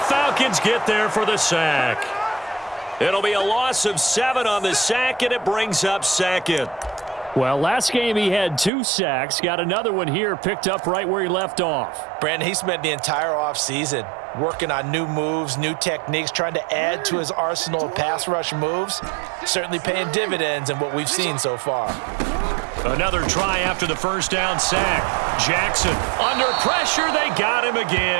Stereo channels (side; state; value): left; drops out; at 8.7 s